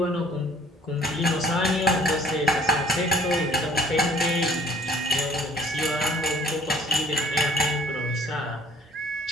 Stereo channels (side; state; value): both; normal; correlation 0.56